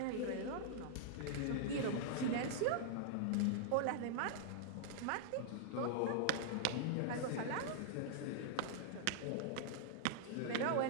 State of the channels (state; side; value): different; both; correlation -0.01